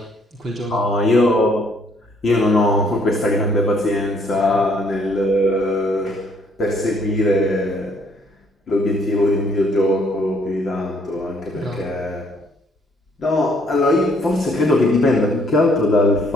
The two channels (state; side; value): normal; both; correlation 0.65